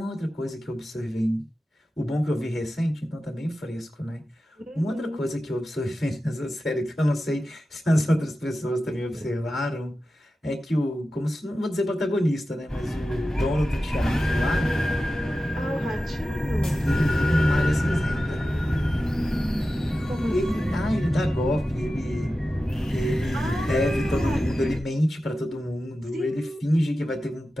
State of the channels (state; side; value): normal; both; correlation 0.93